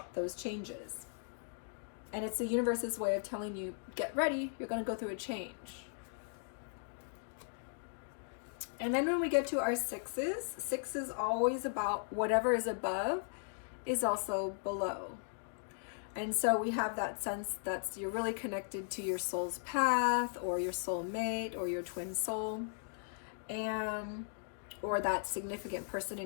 those changes. And it's the universe's way of telling you, get ready, you're going to go through a change. And then when we get to our 6s, 6 is always about whatever is above is also below. And so we have that sense that you're really connected to your soul's path, or your soul mate, or your twin soul, and or that significant person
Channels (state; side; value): silent; right; digital silence